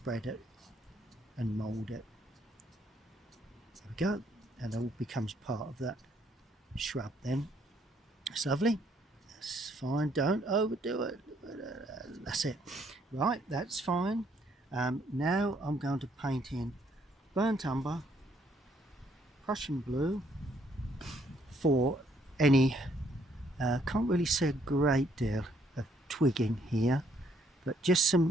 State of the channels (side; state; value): both; normal; correlation 0.68